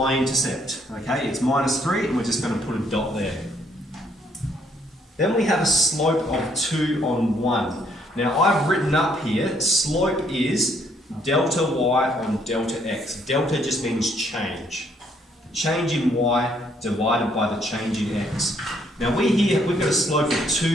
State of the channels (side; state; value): both; normal; correlation 0.68